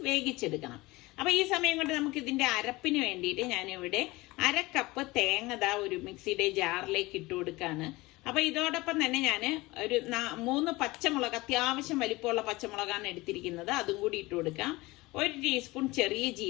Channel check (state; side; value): quieter; right; 21.3 dB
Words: വേവിച്ചെടുക്കണം. അപ്പൊ ഈ സമയം കൊണ്ട് നമുക്ക് ഇതിന്റെ അരപ്പിന് വേണ്ടിയിട്ട് ഞാനിവിടെ 1/2 കപ്പ് തേങ്ങ ഒരു മിക്സിയുടെ ജാറിലേക്ക് ഇട്ട് കൊടുക്കാണ്. അപ്പൊ ഇതോടൊപ്പം തന്നെ ഞാൻ ഒരു 3 പച്ചമുളക്, അത്യാവശ്യം വലിപ്പമുള്ള പച്ചമുളകാണ് എടുത്തിരിക്കുന്നത്, അതും കൂടി ഇട്ട് കൊടുക്കാം. 1 ടീസ്പൂൺ ചെറിയ